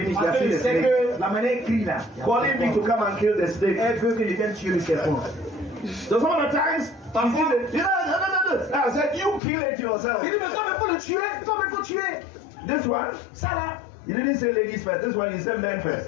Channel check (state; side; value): drops out; right; at 9.4 s